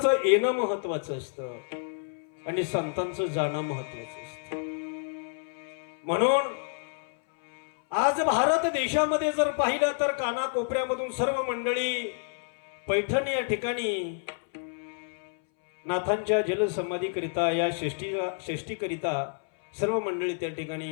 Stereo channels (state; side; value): silent; right; 59 dB below the other